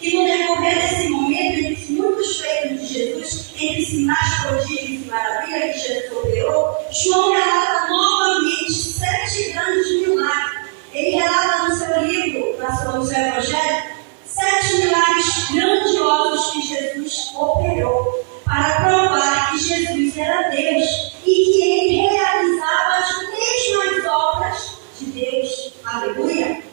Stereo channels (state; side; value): silent; left; 66 dB below the other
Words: E no decorrer desse momento, entre muitos feitos de Jesus, entre sinais, prodígios e maravilhas que Jesus operou, João relata novamente 7 grandes milagres. Ele relata no seu livro, no seu Evangelho, 7 milagres grandiosos que Jesus operou para provar que Jesus era Deus e que ele realizava as mesmas obras de Deus. Aleluia!